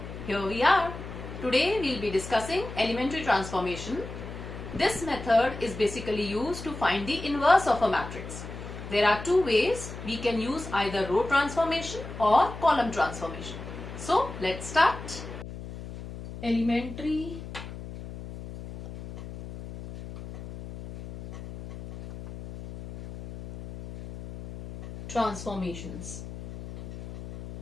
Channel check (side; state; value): left; noise; hum, 11 dB below the sound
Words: here we are. Today we will be discussing elementary transformation. This method is basically used to find the inverse of a matrix. There are two ways. We can use either row transformation or column transformation. So let's start. Elementary transformations.